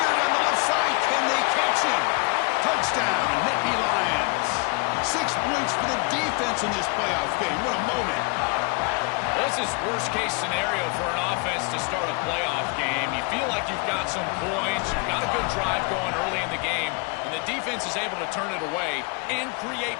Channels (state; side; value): quieter; right; 31.1 dB